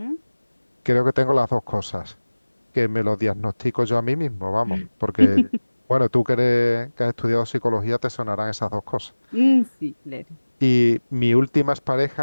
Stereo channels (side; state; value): both; inverted; correlation -1.00